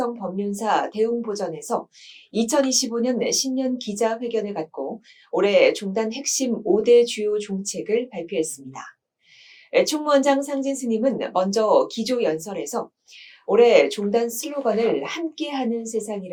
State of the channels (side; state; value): both; identical; correlation 1.00